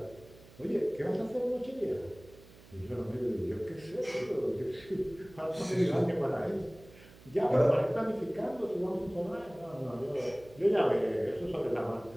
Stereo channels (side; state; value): right; noise; hum, 22 dB below the sound